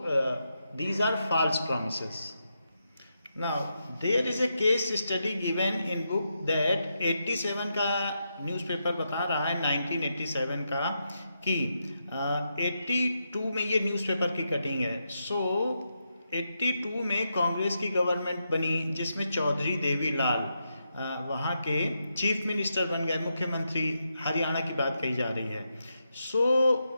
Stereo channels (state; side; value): inverted; both; correlation -0.84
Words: these are false promises. Now there is a case study given in book that 87 का न्यूज़पेपर बता रहा है 1987 का कि 82 में ये न्यूज़पेपर की कटिंग है। सो 82 में कांग्रेस की गवर्नमेंट बनी जिसमें चौधरी देवीलाल वहाँ के चीफ मिनिस्टर बन गए, मुख्यमंत्री। हरियाणा की बात कही जा रही है। सो